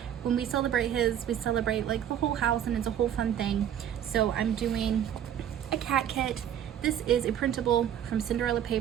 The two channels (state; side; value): quieter; left; 10.0 dB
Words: when we celebrate we celebrate like the whole house and it's a whole fun thing. So I'm doing a cat kit. This is a printable from Cinderella